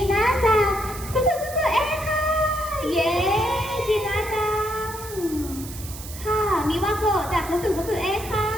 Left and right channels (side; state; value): right; noise; hiss, 13 dB below the sound